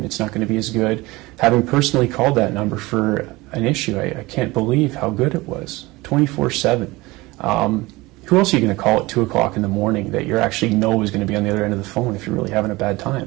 it's not going to be as good. Having personally called that number for an issue, I can't believe how good it was, 24/7. Who else are you going to call at 2 o'clock in the morning that you actually know is going to be on the other end of the phone if you're really having a bad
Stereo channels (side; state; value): left; quieter; 21.3 dB